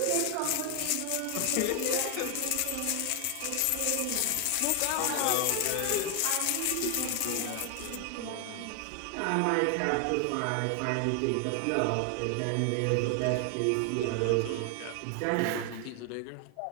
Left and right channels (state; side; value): different; both; correlation 0.00